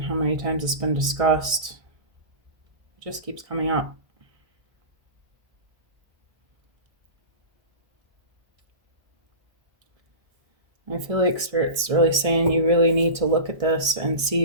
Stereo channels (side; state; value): left; late; 1.6 ms